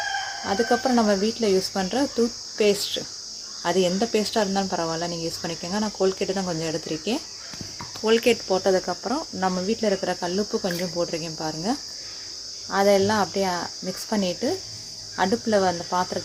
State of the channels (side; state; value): both; identical; correlation 1.00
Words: அதுக்கப்புறம் நம்ம வீட்டில் யூஸ் பண்ணுற டூத் பேஸ்ட், அது எந்த பேஸ்ட்டாக இருந்தாலும் பரவாயில்ல, நீங்கள் யூஸ் பண்ணிக்கோங்க. நான் கோல்கேட்டு தான் கொஞ்சம் எடுத்திருக்கேன். கோல்கேட் போட்டதுக்கப்புறம் நம்ம வீட்டில் இருக்கிற கல்லுப்பு கொஞ்சம் போட்டிருக்கேன் பாருங்கள். அதெல்லாம் அப்படியே மிக்ஸ் பண்ணிவிட்டு அடுப்பில் அந்த